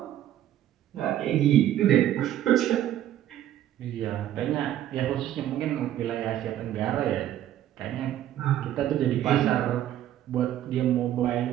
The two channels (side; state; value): left; quieter; 12.1 dB